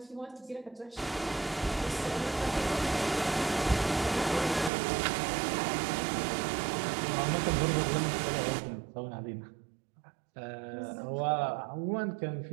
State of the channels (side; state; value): left; drops out; at 4.7 s